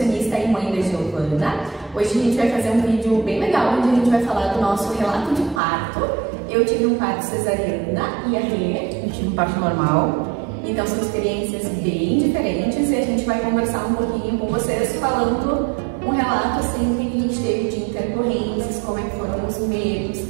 e mãe da Giovana. Hoje a gente vai fazer um vídeo bem legal, onde a gente vai falar do nosso relato de parto. Eu tive um parto cesariana e a Rê, eu tive um parto normal. Então são experiências bem diferentes e a gente vai conversar um pouquinho com vocês, falando um relato assim que a gente teve de intercorrências, como é que foram os medos.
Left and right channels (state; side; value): drops out; left; at 5.6 s